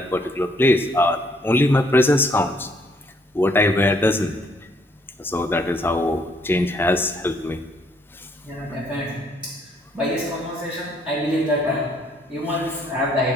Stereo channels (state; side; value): normal; both; correlation 0.67